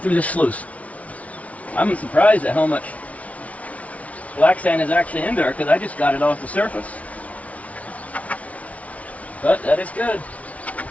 this sluice. I'm surprised at how much black sand is actually in there, because I just got it off the surface. But that is good.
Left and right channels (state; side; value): late; right; 0.067 ms